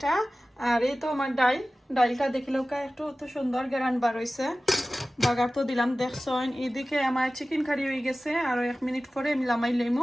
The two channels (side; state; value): both; normal; correlation 0.96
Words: আর এই তো আমার ডাইলটা দেখিলেও একটু তো সুন্দর গেরান বার হইছে, বাগার তো দিলাম দেখছেন। এদিকে আমার চিকেন কারি হয়ে গেছে, আর 1 মিনিট পরে আমি লামাই